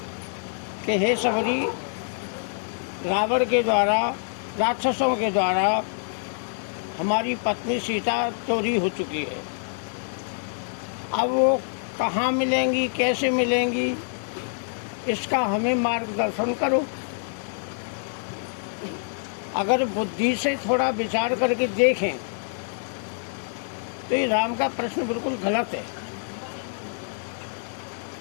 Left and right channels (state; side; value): silent; right; digital silence